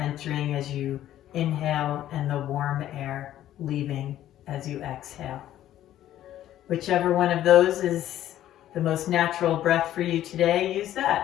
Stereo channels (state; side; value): quieter; right; 12.6 dB